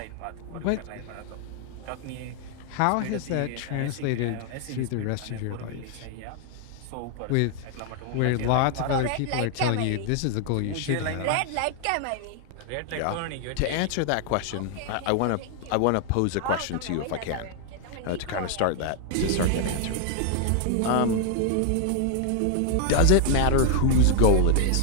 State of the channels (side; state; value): both; different; correlation 0.00